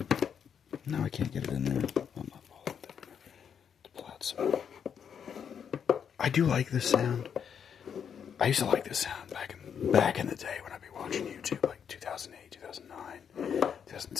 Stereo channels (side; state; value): right; quieter; 7.7 dB